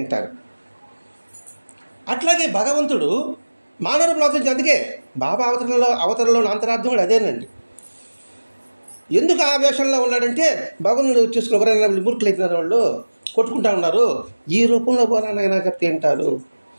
అట్లాగే భగవంతుడు మానవులు అవతరించి. అందుకే బాబా అవతరణలో అంతరార్థం కూడా అదేనండి. ఎందుకు ఆ వేషంలో ఉన్నాడంటే, భగవంతుడు చూసుకుని ఎవరైనా మూర్ఖులు అయిపోయినారు, వాళ్ళు కొట్టుకుంటా ఉన్నారు, ఈ రూపంలో పోరానైనా చెప్తే వింటారు.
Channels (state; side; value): inverted; both; correlation -1.00